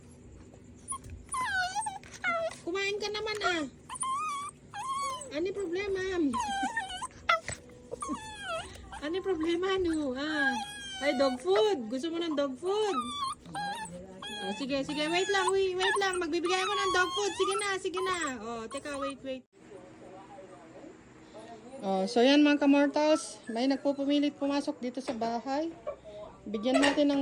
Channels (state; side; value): identical; both; correlation 1.00